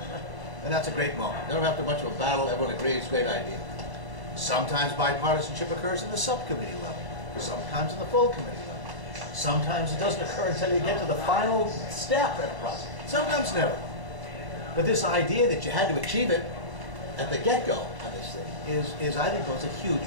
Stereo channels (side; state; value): left; late; 1.0 ms